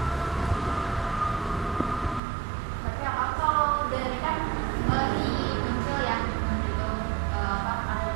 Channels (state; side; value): drops out; left; at 2.2 s